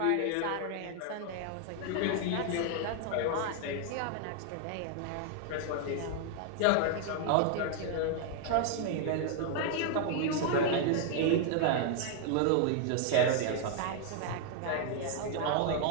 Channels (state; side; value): different; both; correlation 0.00